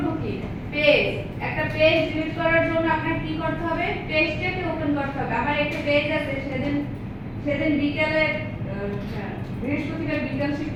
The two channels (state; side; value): identical; both; correlation 1.00